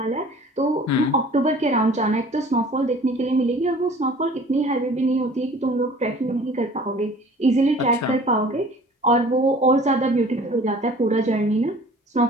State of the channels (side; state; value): both; normal; correlation 0.48